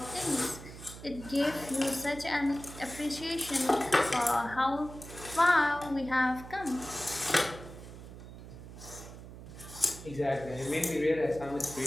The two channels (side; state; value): right; noise; hum, 14 dB below the sound